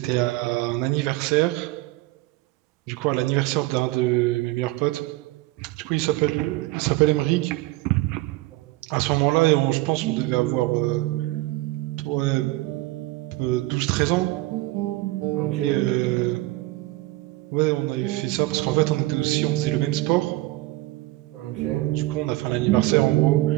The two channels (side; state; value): left; quieter; 19.5 dB